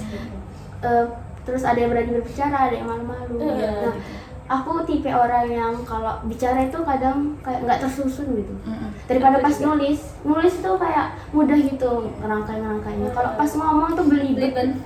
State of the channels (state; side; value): identical; both; correlation 1.00